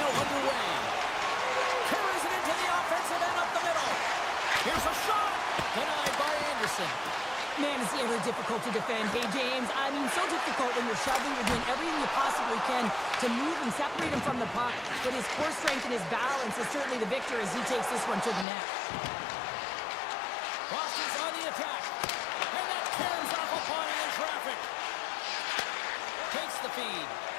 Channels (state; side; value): drops out; right; at 18.4 s